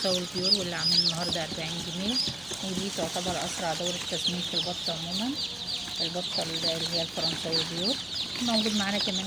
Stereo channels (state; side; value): noise; right; hum, 27 dB below the sound